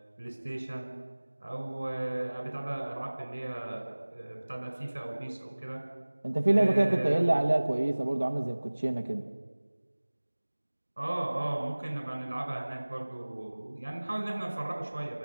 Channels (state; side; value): inverted; both; correlation -1.00